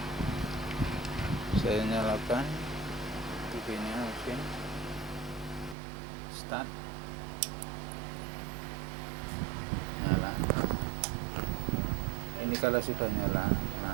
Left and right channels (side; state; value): left; drops out; at 5.8 s